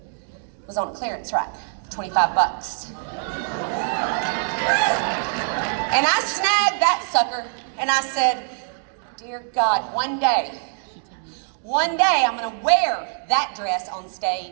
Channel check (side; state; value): left; silent; digital silence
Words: was on a clearance rack for 25 bucks. And I snagged that sucker, and I said, dear God, one day I'm gonna wear that dress on